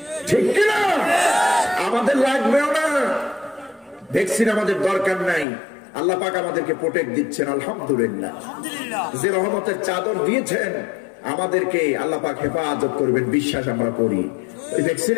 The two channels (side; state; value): right; drops out; at 5.5 s